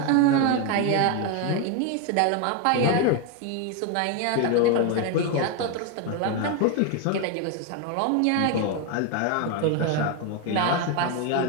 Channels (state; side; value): different; both; correlation 0.01